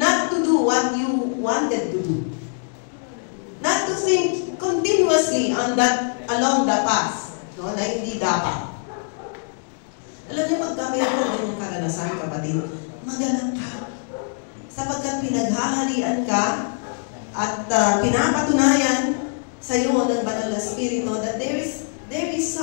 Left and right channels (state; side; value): silent; right; 63 dB below the other